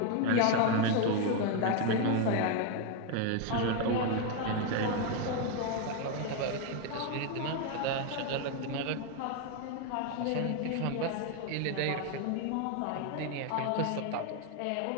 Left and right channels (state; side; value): different; both; correlation 0.01